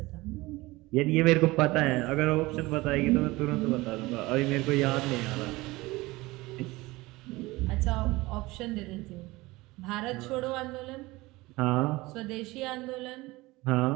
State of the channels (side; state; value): left; quieter; 20.8 dB